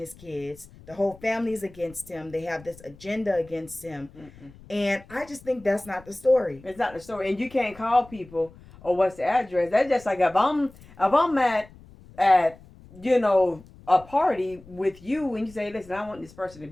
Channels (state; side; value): noise; left; rumble, 22 dB below the sound